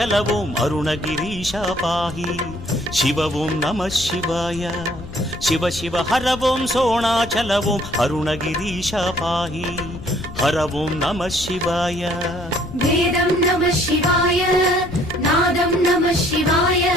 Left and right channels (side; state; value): left; noise; rumble, 13 dB below the sound